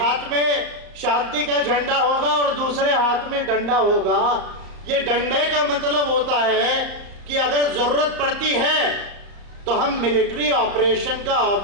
हाथ में शांति का झंडा होगा और दूसरे हाथ में डंडा होगा। ये डंडे का मतलब होता है कि अगर जरूरत पड़ती है तो हम मिलिट्री ऑपरेशन का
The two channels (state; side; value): late; left; 34 ms